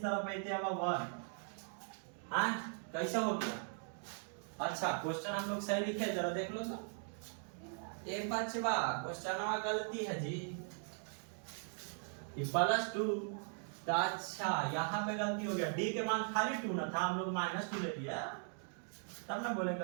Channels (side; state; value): left; silent; 51 dB below the other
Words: तरफ आते हुआ 1, कैसे हो गया अच्छा क्वेश्चन हम लोग सही लिखे, जरा देख लो तो। एक बचवा क्वेश्चन गलती है जी, +2। तो अच्छा यहाँ पे गलती हो गया, डी के मान खाली 2 ना था, हम लोग -2 ले लिया, तब ना बोले